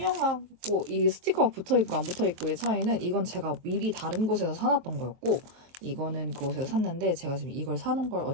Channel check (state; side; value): late; left; 23 ms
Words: 이 스티커가 붙어있고 안 붙어있고의 차이는 이건 제가 미리 다른 곳에서 사놨던 거였고 이거는 그곳에서 샀는데 제가 지금 이걸 사는 걸